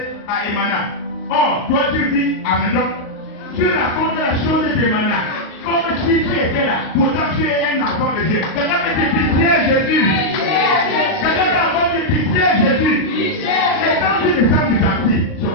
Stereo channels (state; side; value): late; right; 38 ms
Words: à Emana. Or, toi tu vis à Mendon. Tu racontes la chose d'Emana. Comme si tu étais là, pourtant tu es un enfant de Dieu. Quelqu'un peut dire pitié Jésus. Quelqu'un peut encore dire pitié Jésus. Et quand tu descends du taxi, c'est